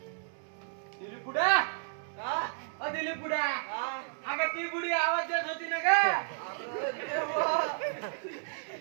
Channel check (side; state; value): left; silent; digital silence